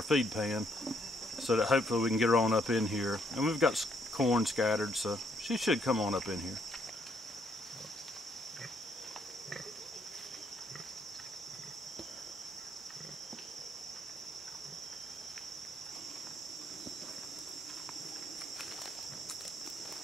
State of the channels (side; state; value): both; normal; correlation 0.71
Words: feed pan, so that hopefully we can get her on up in here. And we've got corn scattered, so she should come on up in here.